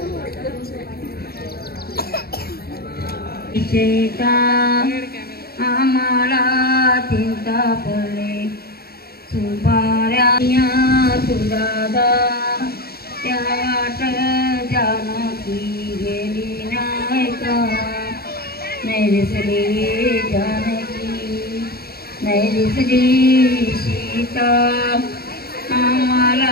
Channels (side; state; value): right; late; 0.45 ms